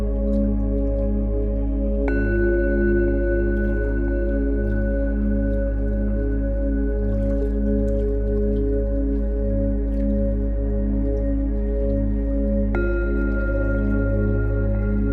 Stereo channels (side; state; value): both; identical; correlation 1.00